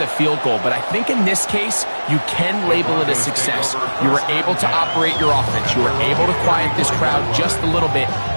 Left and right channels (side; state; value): both; inverted; correlation -1.00